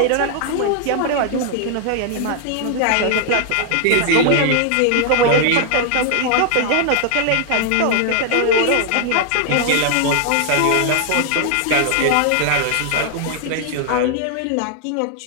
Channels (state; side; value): different; both; correlation 0.00